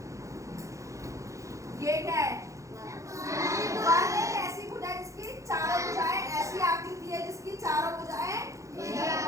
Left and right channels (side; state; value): left; late; 0.15 ms